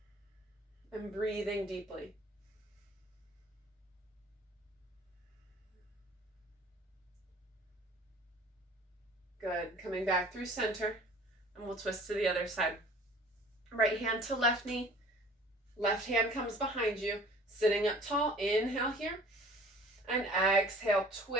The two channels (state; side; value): normal; both; correlation 0.48